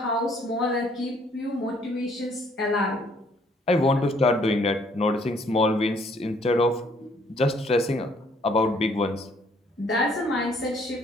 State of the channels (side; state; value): both; normal; correlation 0.64